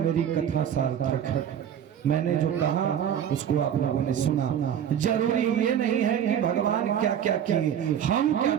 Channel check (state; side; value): quieter; left; 9.3 dB